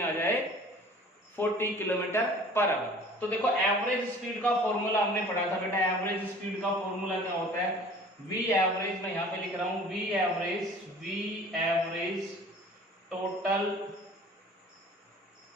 जाए? 40 किलोमीटर पर आवर। तो देखो एवरेज स्पीड का फॉर्मूला हमने पढ़ा था बेटा। एवरेज स्पीड का फॉर्मूला क्या होता है? वी एवरेज, मैं यहां पे लिख रहा हूं V average total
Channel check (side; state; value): both; normal; correlation 0.47